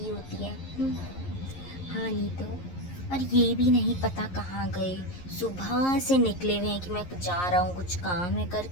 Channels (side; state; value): right; late; 11 ms